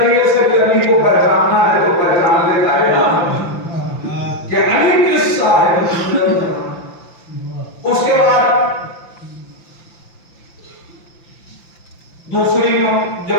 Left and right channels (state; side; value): late; right; 5.8 ms